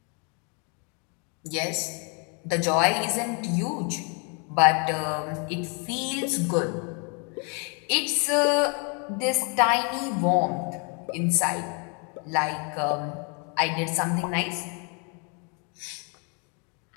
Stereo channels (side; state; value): right; quieter; 35.8 dB